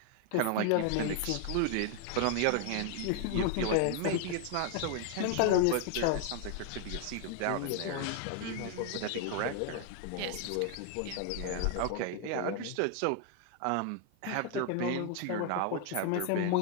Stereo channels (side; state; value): both; different; correlation 0.00